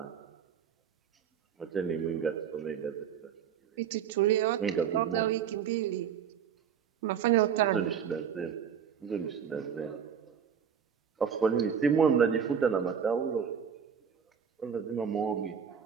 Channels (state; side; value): quieter; left; 7.7 dB